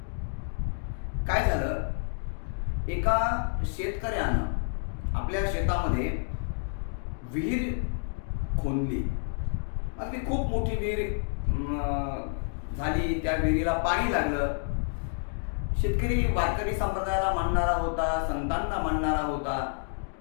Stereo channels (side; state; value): right; silent; digital silence